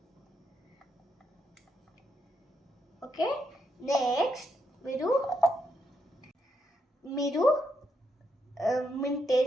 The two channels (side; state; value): both; normal; correlation 0.80